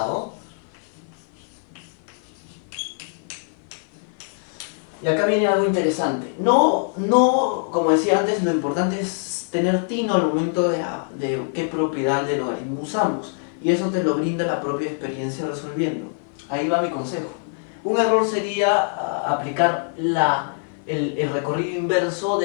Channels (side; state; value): right; silent; 55 dB below the other